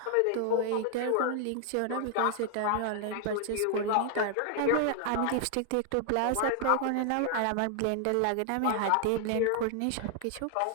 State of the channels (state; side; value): different; both; correlation 0.00